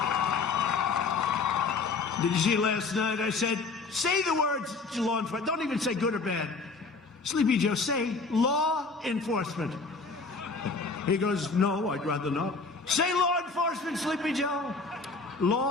Did you see last night? I said, say the words to law enforcement. Don't even say good or bad. Sleepy Joe, say law enforcement. He goes, no, I'd rather not. Say law enforcement, Sleepy Joe.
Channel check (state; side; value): quieter; right; 4.2 dB